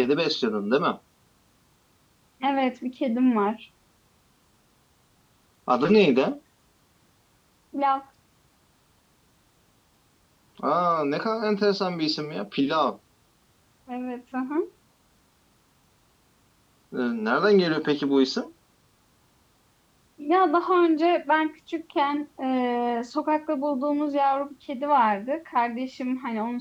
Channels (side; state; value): both; identical; correlation 1.00